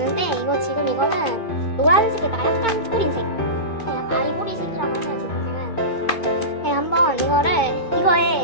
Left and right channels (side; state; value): right; late; 2.5 ms